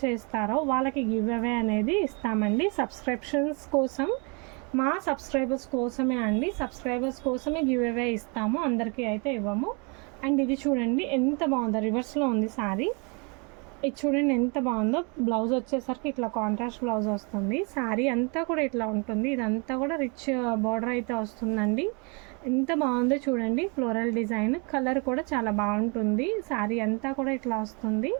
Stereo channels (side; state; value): left; quieter; 33.0 dB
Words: చేస్తారో వాళ్ళకి గివ్ అవే అనేది ఇస్తామండి. సబ్స్క్రిప్షన్స్ కోసం, మా సబ్స్క్రైబర్స్ కోసమే అండి. సబ్స్క్రైబర్స్ కోసమే గివ్ అవే ఇస్తాము, అందరికీ అయితే ఇవ్వము. అండ్ ఇది చూడండి ఎంత బాగుందో, రివర్స్లో ఉంది శారీ. ఇది చూడండి ఎంత బాగుందో. బ్లౌజ్ వచ్చేసరికి ఇట్లా కాంట్రాస్ట్ బ్లౌజ్ వస్తుంది. శారీ అంతా కూడా ఇట్లా ఉంటుంది. ఇదంతా కూడా రిచ్ బార్డర్ అయితే వస్తుందండి. ఎంత బాగుందో చూడండి. ఫ్లోరల్ డిజైన్, కలర్ కూడా చాలా బాగుంటుంది. శారీ అంతా కూడా ఇట్లా వస్తుంది.